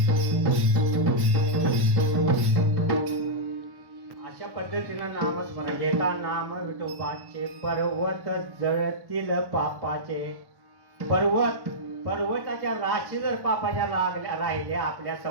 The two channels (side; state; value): left; late; 1.1 ms